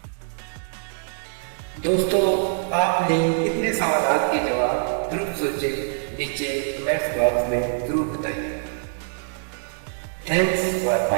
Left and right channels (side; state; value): left; silent; digital silence